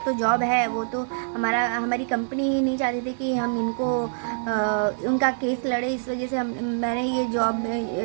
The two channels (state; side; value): silent; left; digital silence